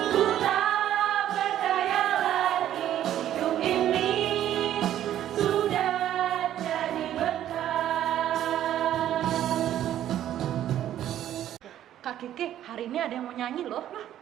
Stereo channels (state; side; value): quieter; left; 11.7 dB